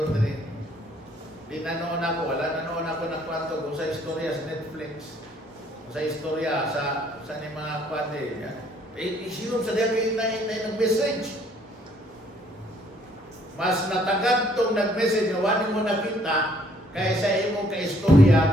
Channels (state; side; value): normal; both; correlation 0.64